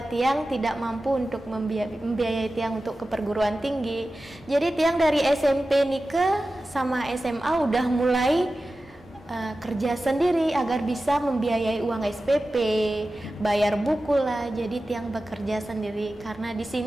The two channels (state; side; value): normal; both; correlation 0.94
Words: Tiang tidak mampu untuk membiayai Tiang untuk ke perguruan tinggi. Jadi Tiang dari SMP Nike sama SMA udah mulai kerja sendiri agar bisa membiayai uang SPP, bayar buku lah. Jadi Tiang bekerja sendiri karena di